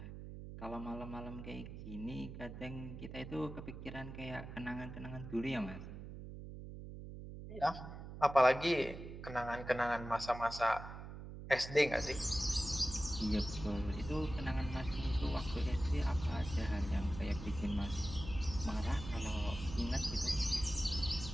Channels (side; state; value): right; noise; hum, 10 dB below the sound